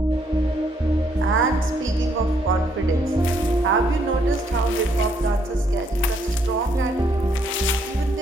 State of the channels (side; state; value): both; normal; correlation 0.71